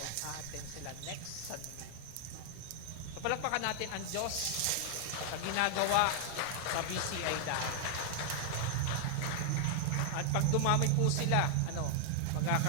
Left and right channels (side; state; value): both; different; correlation 0.00